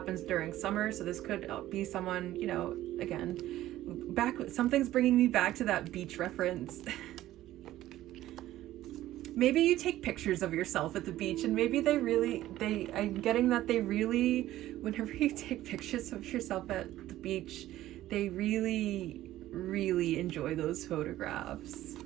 during summer. So this could be someone, you know, again, something's bringing me back to that beach reference. Maybe you take pictures of yourself at the beach, and maybe I'm getting that they really, whenever you take pictures of yourself at the beach, they really, really enjoy those photographs.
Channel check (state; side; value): quieter; left; 14.5 dB